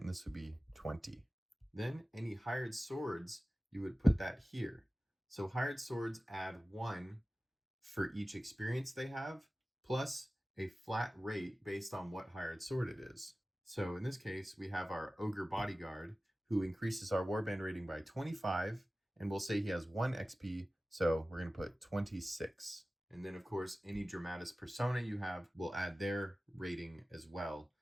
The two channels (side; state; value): both; normal; correlation 0.96